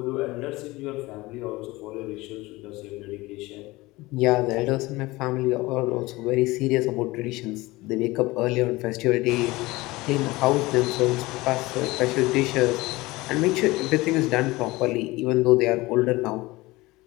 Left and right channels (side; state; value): right; quieter; 20.7 dB